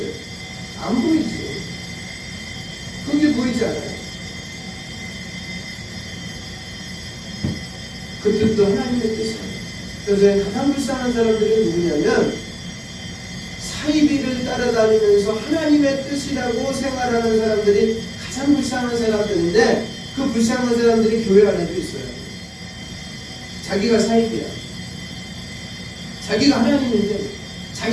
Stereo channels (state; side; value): identical; both; correlation 1.00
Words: 안 보이지. 그게 보이지 않아요. 그 뜻도 하나님의 뜻이에요. 그래서 가장 불쌍한 사람들은 누구냐면 사이비를 따라다니면서 하나님의 뜻이라고 생활하는 사람들이 가장 불쌍한 사람들인데 그 불쌍한 사람들이 교회 안에도 있어요. 자기가 사이비야. 자기가 하나님인데